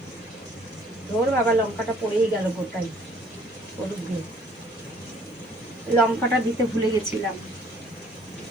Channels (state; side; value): normal; both; correlation 0.59